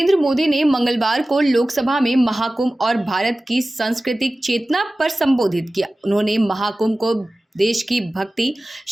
मोदी ने मंगलवार को लोकसभा में महाकुंभ और भारत की सांस्कृतिक चेतना पर संबोधित किया। उन्होंने महाकुंभ को देश की भक्ति,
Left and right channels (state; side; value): normal; both; correlation 0.96